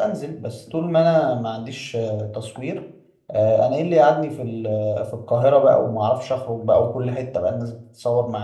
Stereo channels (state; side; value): identical; both; correlation 1.00